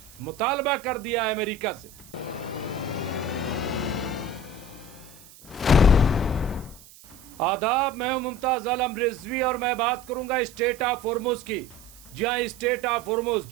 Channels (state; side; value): noise; right; hiss, 22 dB below the sound